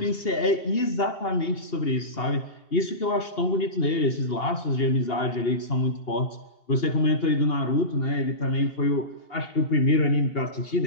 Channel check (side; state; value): right; late; 2.8 ms